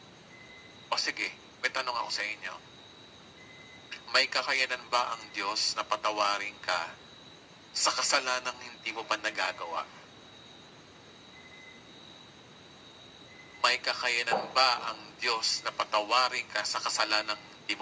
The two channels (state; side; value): identical; both; correlation 1.00